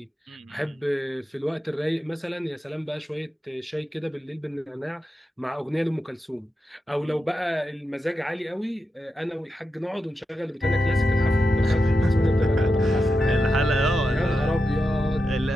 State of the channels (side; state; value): both; normal; correlation 0.88